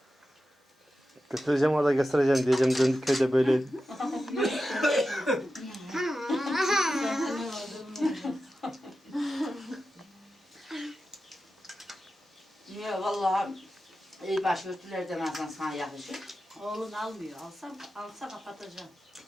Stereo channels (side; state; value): both; normal; correlation 0.92